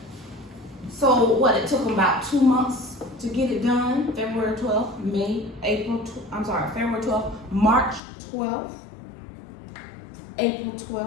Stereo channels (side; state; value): right; drops out; at 8.0 s